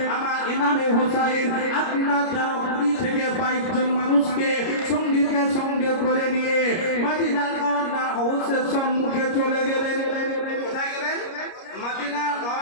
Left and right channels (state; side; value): late; right; 29 ms